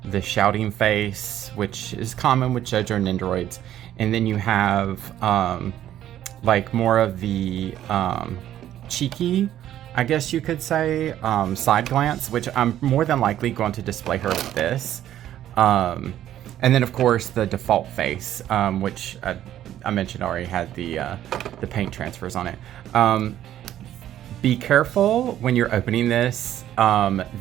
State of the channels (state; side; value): quieter; left; 11.9 dB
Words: the shouting face, which is common with Jojo Nendoroids. And then you have, like more of the, cheeky, I guess you could say, side glance, which I'm more than likely going to display her with this. And then of course the default face, which I mentioned already had the paint transfers on it. Be careful when you're opening this.